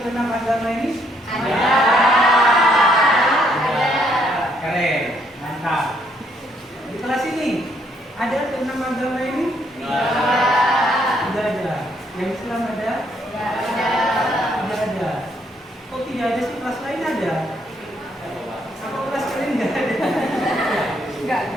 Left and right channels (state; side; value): normal; both; correlation 0.70